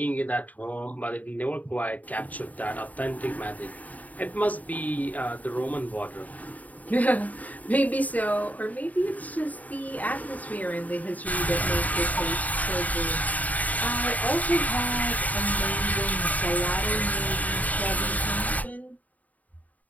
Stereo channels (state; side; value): late; right; 0.074 ms